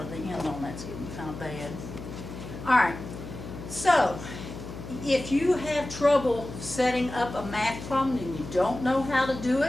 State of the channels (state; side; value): noise; left; hum, 11 dB below the sound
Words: The end on that's getting kind of bad. All right, so if you have trouble setting up a math problem and you don't know how to do